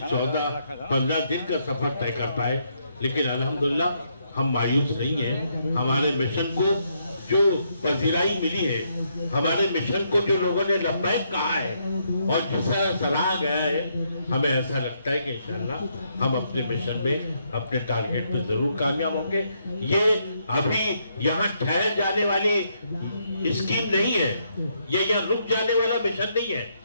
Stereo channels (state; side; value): inverted; both; correlation -0.75